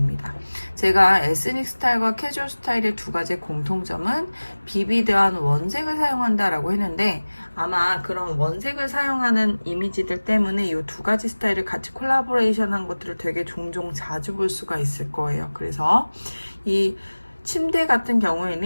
제가 에스닉 스타일과 캐주얼 스타일의 두 가지 공통점은 비비드한 원색을 사용한다라고 했는데, 아마 그런 원색을 사용하는 이미지들 때문에 이 두 가지 스타일을 같이 콜라보레이션한 것들을 되게 종종 자주 볼 수가 있을 거예요. 그래서 이 침대 같은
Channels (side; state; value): both; inverted; correlation -1.00